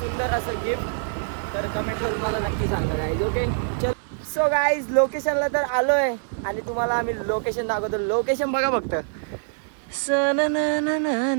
असं गिफ्ट. तर कमेंट करून मला नक्की सांगा गाईज. ओके चल. सो गाईज लोकेशनला तर आलो आहे आणि तुम्हाला आम्ही लोकेशन दाखवतो. लोकेशन बघा फक्त,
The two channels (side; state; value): left; silent; digital silence